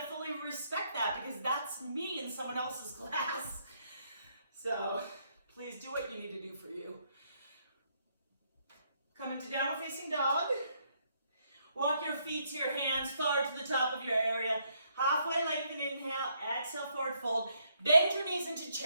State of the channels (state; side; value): inverted; both; correlation -0.73